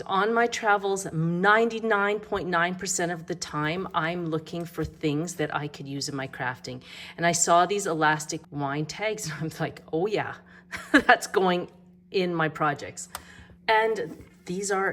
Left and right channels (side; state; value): both; identical; correlation 1.00